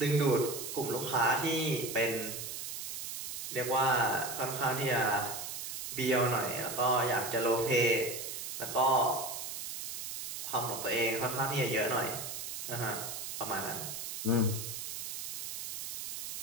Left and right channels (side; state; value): right; noise; hiss, 6 dB below the sound